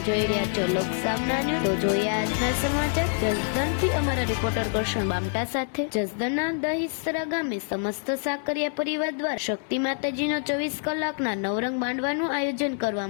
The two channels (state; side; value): silent; right; 60 dB below the other